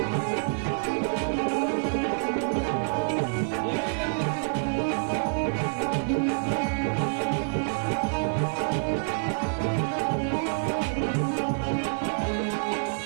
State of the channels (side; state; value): left; silent; digital silence